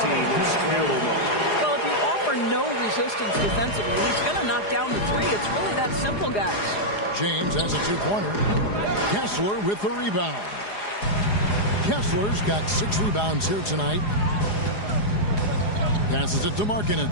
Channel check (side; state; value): right; late; 4.9 ms